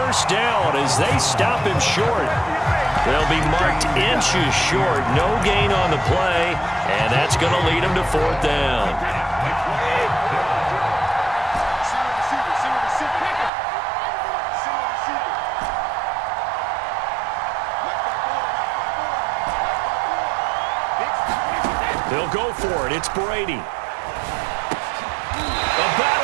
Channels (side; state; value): left; drops out; at 13.5 s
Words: down as they stop him short. They'll be marked inches short. No gain on the play, and that's going to lead him to 4th down. They'll go for it. It's Brady.